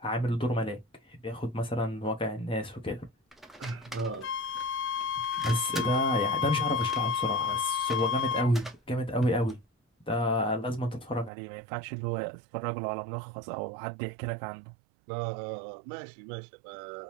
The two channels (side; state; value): left; drops out; at 11.3 s